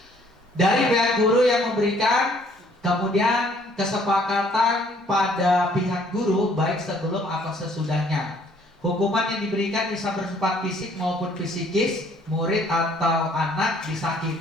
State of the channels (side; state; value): both; normal; correlation 0.61